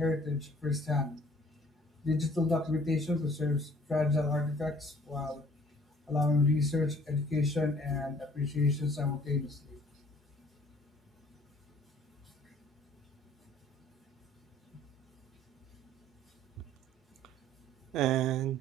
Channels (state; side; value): normal; both; correlation 0.56